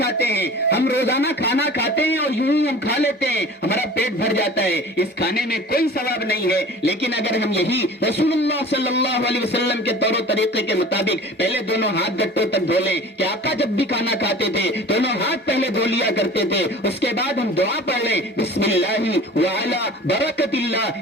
ہیں، ہم روزانہ کھانا کھاتے ہیں اور یوں ہی ہم کھا لیتے ہیں، ہمارا پیٹ بھر جاتا ہے، اس کھانے میں کوئی ثواب نہیں ہے۔ لیکن اگر ہم یہی رسول اللہ صلی اللہ علیہ وسلم کے طور و طریقے کے مطابق پہلے دونوں ہاتھ گٹوں تک دھو لیں، کہ آقا جب بھی کھانا کھاتے تھے دونوں ہاتھ پہلے دھو لیا کرتے تھے، اس کے بعد ہم دعا پڑھ لیں بسم اللہ وعلی برکت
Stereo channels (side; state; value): both; normal; correlation 0.41